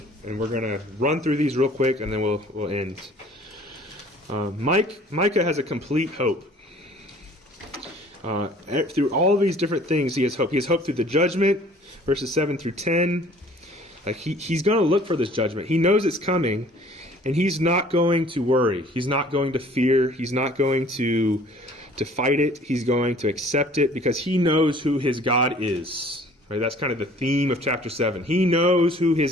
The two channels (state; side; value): normal; both; correlation 0.52